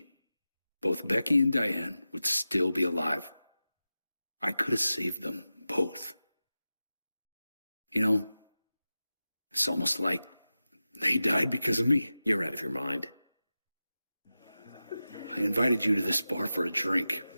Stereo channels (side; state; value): both; inverted; correlation -0.94